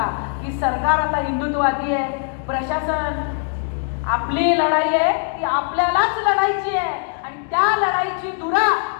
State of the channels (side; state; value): right; silent; 59 dB below the other